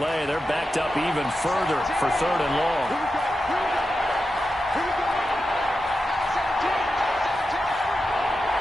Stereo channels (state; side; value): normal; both; correlation 0.90